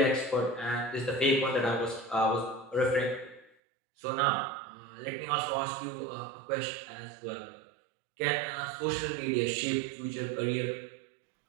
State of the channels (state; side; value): drops out; left; at 3.5 s